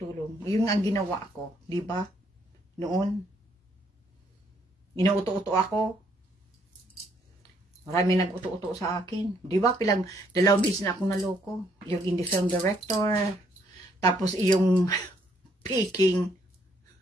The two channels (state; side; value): normal; both; correlation 0.69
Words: Yung ang ginawa ko, di ba? Noon, inuuto-uto ako. Marami nag-uto-uto sa akin. Di ba? 2 beses na akong naloko. Yung indie film director. Tapos yung picking